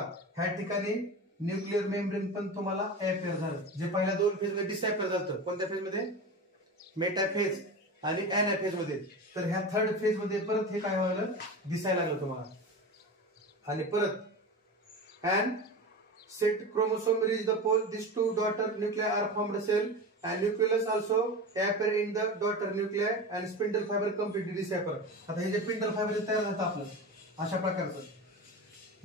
ह्या ठिकाणी न्यूक्लिअर मेम्ब्रेन पण तुम्हाला अॅपियर झालं. जे पहिल्या दोन फेज मध्ये डिसअॅपियर झालं. कोणत्या फेज मध्ये? मेटाफेज आणि अॅनाफेज मध्ये. तर ह्या थर्ड फेज मध्ये परत हे काय व्हायला दिसायला लागलं तुम्हाला. आणि परत and set chromosome reach the pole this two daughter nuclei are formed cell and nucleus also appear in the daughter nuclei and spindle fiber completely disappear. आता हे जे स्पिंडल फायबर तयार झालं आपलं अशा प्रकारचं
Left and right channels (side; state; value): both; normal; correlation 0.28